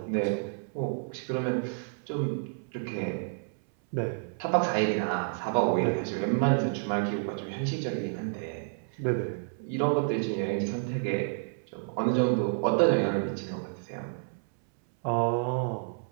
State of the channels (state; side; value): silent; left; 58 dB below the other